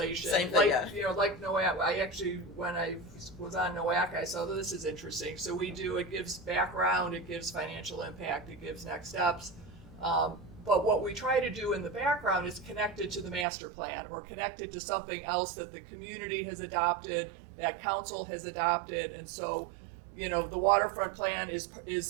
Same thing, like, yeah. You know, like NOAC, I actually, when I was on NOAC, I saw this is interesting. So it gives background, it gives financial impact, it gives next steps. But what we try to do in the background is connected to the master plan or connected to something else that the community has adopted, that council has adopted. And so, you know, the waterfront plan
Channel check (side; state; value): left; drops out; at 13.5 s